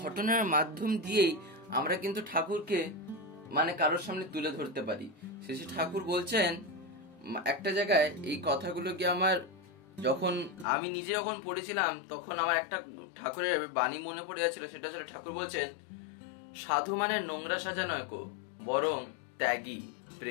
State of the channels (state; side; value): drops out; right; at 10.7 s